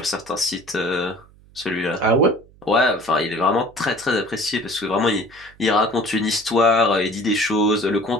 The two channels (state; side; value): noise; right; hum, 27 dB below the sound